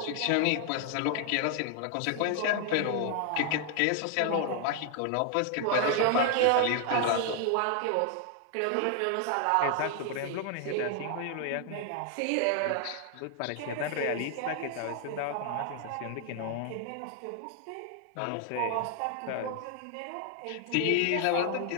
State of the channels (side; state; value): both; different; correlation 0.00